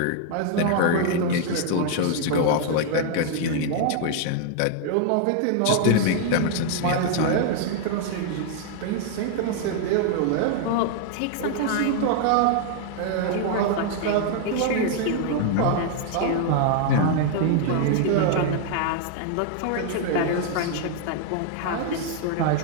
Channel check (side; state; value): both; different; correlation 0.00